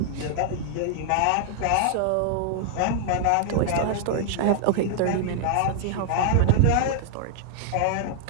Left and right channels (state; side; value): different; both; correlation -0.01